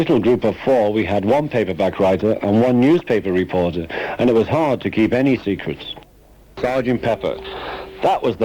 group of four, we had one paperback writer and one newspaper reporter, and it was hard to keep any secrets. Sgt. Pepper. That was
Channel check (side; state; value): both; identical; correlation 1.00